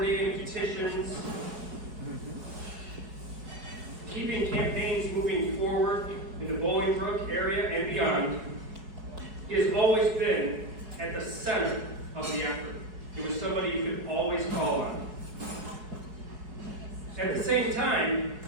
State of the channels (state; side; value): late; left; 4.8 ms